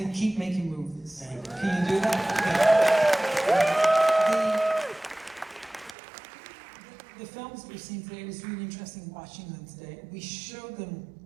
keep making movies. Thank you. Can you do that? The films that we've seen today, it was really interesting watching them today. We showed them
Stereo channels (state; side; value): drops out; left; at 6.0 s